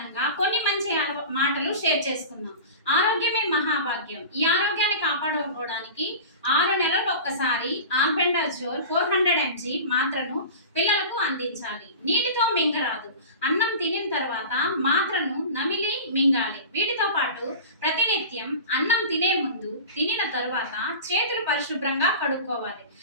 కొన్ని మంచి మాటలు షేర్ చేసుకుందాం. ఆరోగ్యమే మహాభాగ్యం. ఈ ఆరోగ్యాన్ని కాపాడుకోవడానికి 6 నెలలకు ఒక్కసారి ఆల్బెండాజోల్ 400 mg మాత్రను పిల్లలకు అందించాలి. నీటితో మింగరాదు. అన్నం తినిన తర్వాత మాత్రను నమిలి మింగాలి. వీటితో పాటు ప్రతినిత్యం అన్నం తినే ముందు, తినిన తరువాత చేతులు పరిశుభ్రంగా కడుక్కోవాలి.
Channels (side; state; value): both; inverted; correlation -0.33